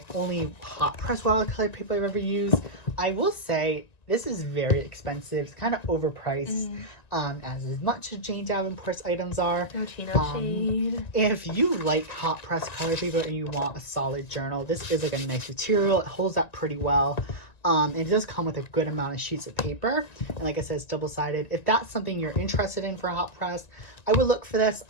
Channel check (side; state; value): right; late; 1.9 ms